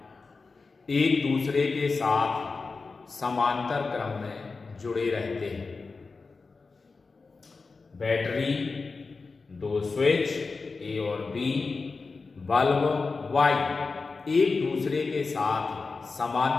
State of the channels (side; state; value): right; quieter; 4.2 dB